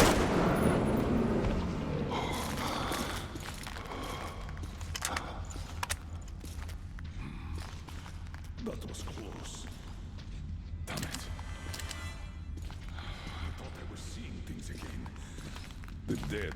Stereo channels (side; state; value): both; identical; correlation 1.00